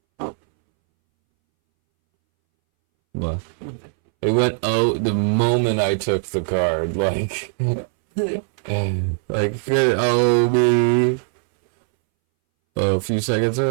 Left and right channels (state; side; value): silent; left; 64 dB below the other